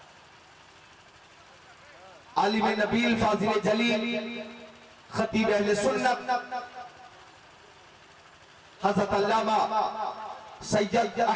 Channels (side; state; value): both; identical; correlation 1.00